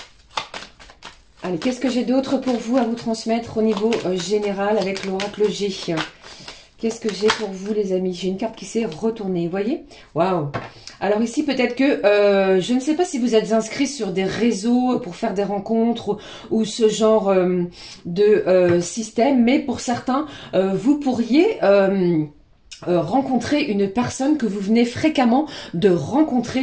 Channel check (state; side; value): identical; both; correlation 1.00